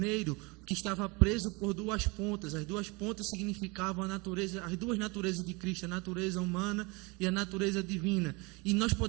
que estava preso por duas pontas. As duas pontas significavam a natureza, as duas naturezas de Cristo, a natureza humana e a natureza divina. E nós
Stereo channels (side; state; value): left; quieter; 27.4 dB